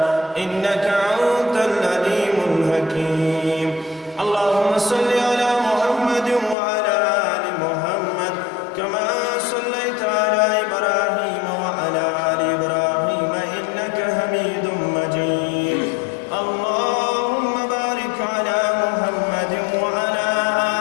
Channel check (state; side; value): drops out; right; at 6.6 s